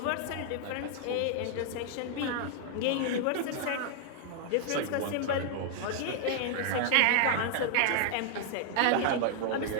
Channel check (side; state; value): both; different; correlation 0.00